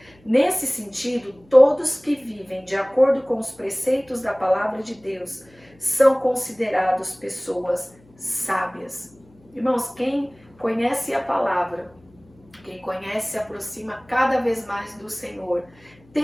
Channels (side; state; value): left; noise; hum, 29 dB below the sound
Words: Nesse sentido, todos que vivem de acordo com os preceitos da palavra de Deus são considerados pessoas sábias. Irmãos, quem conhece a palavra, quem conhece se aproxima cada vez mais do Senhor,